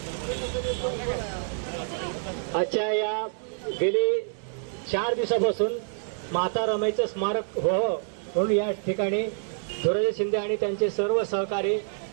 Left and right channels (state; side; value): silent; left; 60 dB below the other